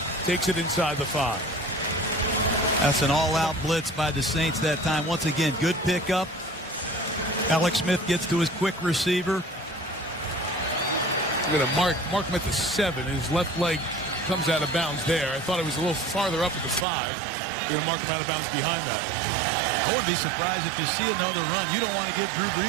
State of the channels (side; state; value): left; drops out; at 16.9 s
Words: takes it inside the 5. That's an all-out blitz by the Saints that time. Once again, good pickup. Alex Smith gets to his quick receiver. Look at him mark him at the 7. His left leg comes out of bounds there. I thought it was a little farther up at the 5. You're going to mark him out of bounds behind that. I wouldn't be surprised if you see another run. You don't want to give Drew